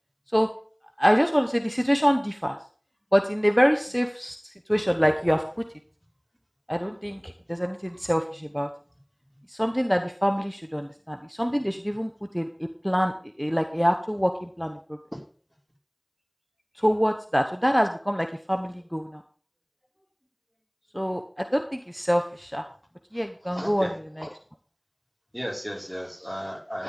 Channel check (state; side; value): identical; both; correlation 1.00